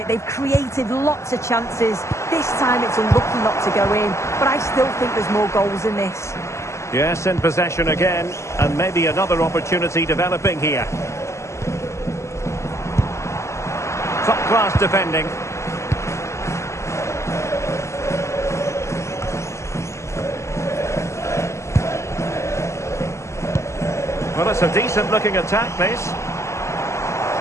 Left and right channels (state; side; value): late; right; 0.13 ms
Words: They've created lots of chances. This time it's unlucky not to go in, but I still think there's more goals in this. Yes, in possession again, and maybe another opportunity developing here. Top-class defending. Well, it's a decent-looking attack, this.